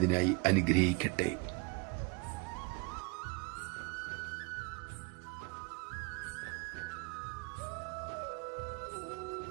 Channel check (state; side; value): quieter; left; 28.6 dB